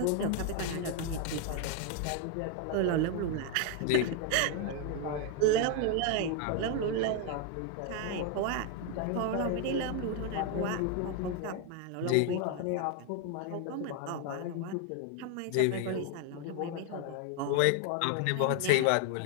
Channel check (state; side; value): different; both; correlation 0.01